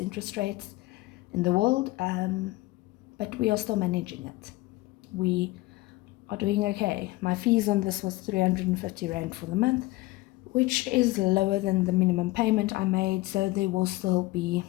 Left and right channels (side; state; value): right; quieter; 19.8 dB